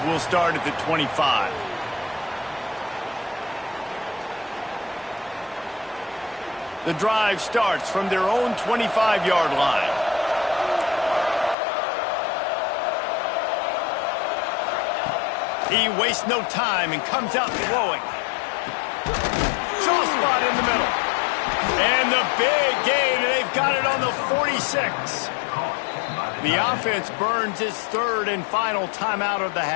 will start at the 25. The drive starts from their own 25-yard line. He wastes no time and comes out throwing. Soft spot in the middle. And the big gain, and they've got it on the 46. The offense burns its third and final timeout of the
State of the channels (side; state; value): right; drops out; at 11.6 s